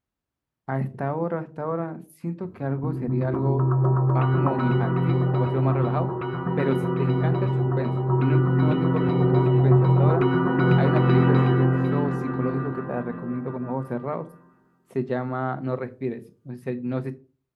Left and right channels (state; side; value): identical; both; correlation 1.00